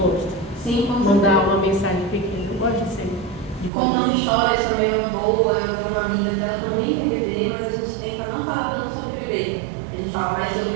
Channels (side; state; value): left; drops out; at 3.7 s